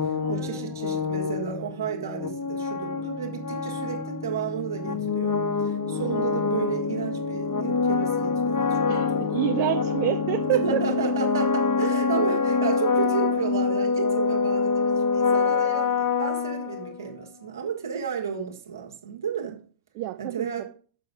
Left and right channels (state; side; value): inverted; both; correlation -0.38